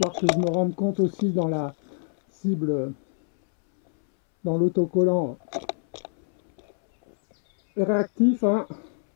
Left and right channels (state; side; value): silent; right; 62 dB below the other